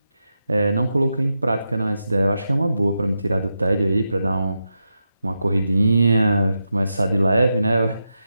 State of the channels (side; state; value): both; inverted; correlation -0.88